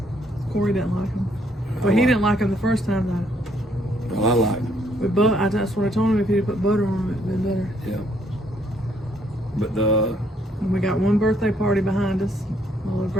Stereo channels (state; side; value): normal; both; correlation 0.69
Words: Corey didn't like them. Well, he didn't like them the first time though. well, I like them. With butter, that's what I told him. If he'd put butter on them, it'd been better. Yeah. But And we got one birthday party behind us. My little